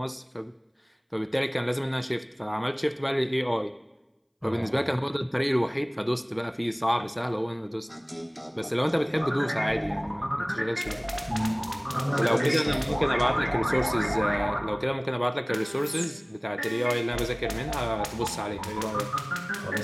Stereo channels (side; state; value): both; identical; correlation 1.00